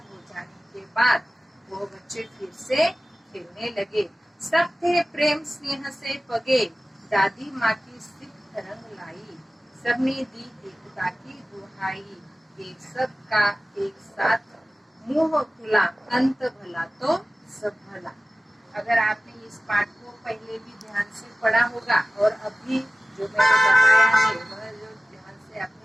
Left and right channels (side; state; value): both; normal; correlation 0.96